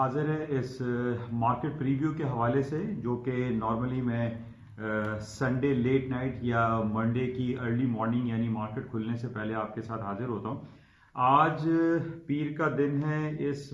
है इस मार्केट प्रीव्यू के हवाले से, जो कि नॉर्मली मैं संडे लेट नाइट या मंडे की अर्ली मॉर्निंग यानी मार्केट खुलने से पहले आपके साथ हाजिर होता हूँ। आज पीर का दिन है, इस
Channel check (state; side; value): identical; both; correlation 1.00